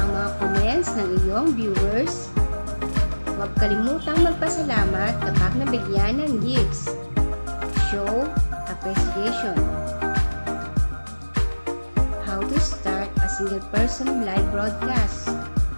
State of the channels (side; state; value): both; inverted; correlation -1.00